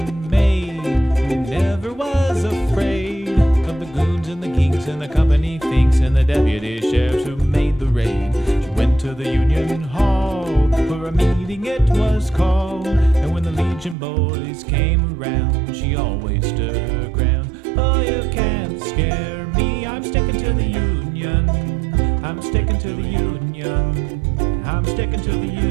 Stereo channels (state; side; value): drops out; left; at 14.0 s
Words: maid who never was afraid of the goons and the geeks and the company thinks and the deputy sheriffs who made the raid. She went to the union hall for a meeting it was called, and when the Legion boys came around she always stood her ground. Oh, you can't scare me, I'm sticking to the union, I'm sticking to the union, I'm sticking to the